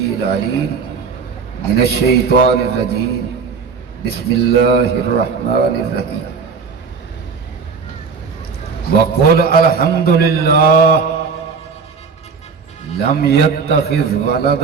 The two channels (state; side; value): quieter; left; 5.4 dB